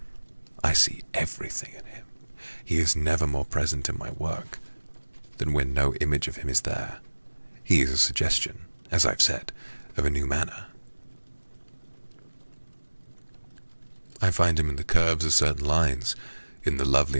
I see everything in him. He is never more present in my work than when no image of him is there. He is a suggestion, as I've said, of a new manner. I find him in the curves of certain lines, in the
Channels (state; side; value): inverted; both; correlation -1.00